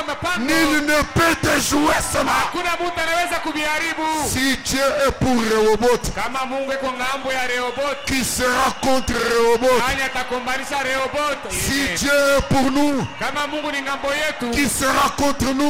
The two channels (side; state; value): both; identical; correlation 1.00